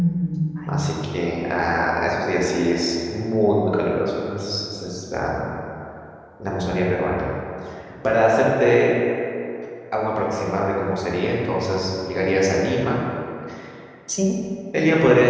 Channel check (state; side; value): identical; both; correlation 1.00